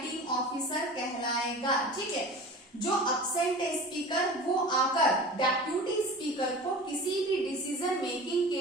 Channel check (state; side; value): normal; both; correlation 0.37